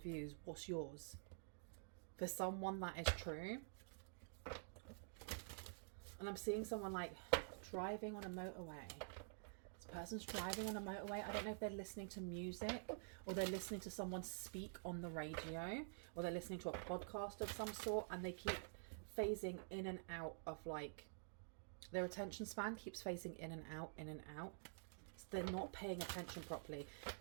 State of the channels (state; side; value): silent; left; digital silence